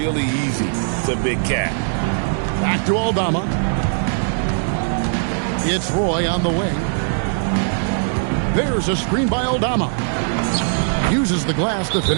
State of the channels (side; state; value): left; silent; digital silence